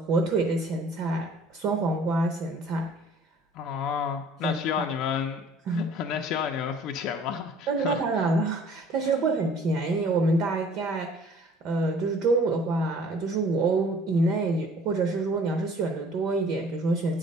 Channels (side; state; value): both; normal; correlation 0.52